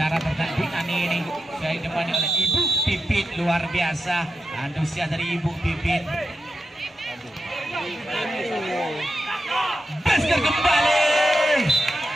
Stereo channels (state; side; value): normal; both; correlation 0.88